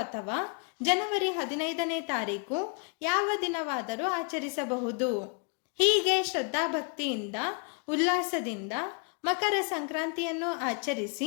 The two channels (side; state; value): right; quieter; 37.1 dB